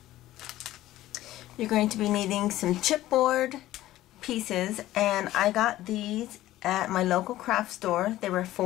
you're going to be needing some chipboard pieces, and I got these at my local craft store. They were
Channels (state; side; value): quieter; right; 15.1 dB